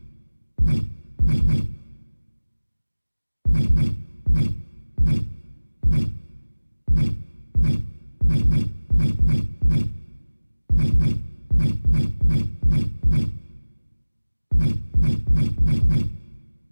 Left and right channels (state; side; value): inverted; both; correlation -1.00